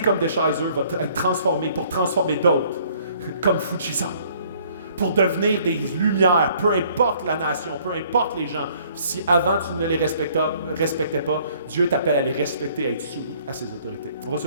Deschizer va être transformée pour transformer d'autres, comme Fujisan. pour devenir des lumières, peu importe la nation, peu importe les gens. Si avant tu ne les respectais pas, Dieu t'appelle à les respecter, à être soumis à ses autorités. On va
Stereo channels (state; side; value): inverted; both; correlation -0.60